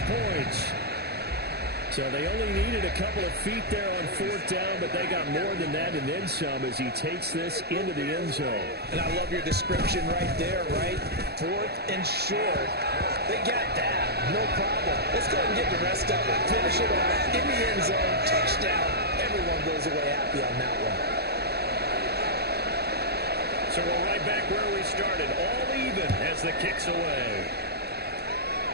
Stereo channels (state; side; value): late; left; 0.47 ms